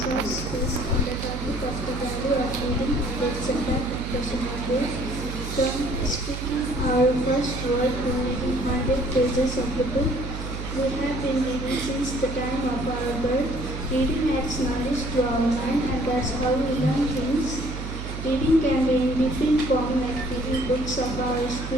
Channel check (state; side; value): noise; right; hum, 7 dB below the sound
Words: short speech on the topic of the value of reading and its impact on personal growth. From speaking our first word to reading 100 pages of the book, we have been reading since the time of our birth. Reading adds knowledge to our mind, and that's how we learn things. Reading can be in different forms, like reading books of our